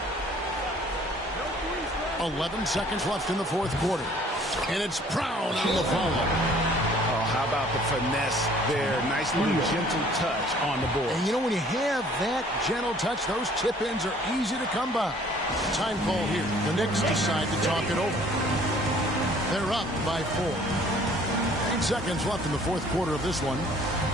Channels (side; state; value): both; normal; correlation 0.56